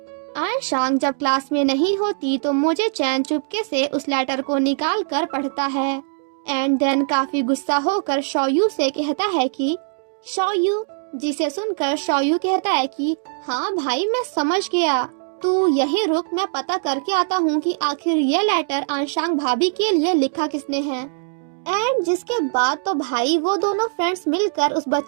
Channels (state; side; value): silent; left; digital silence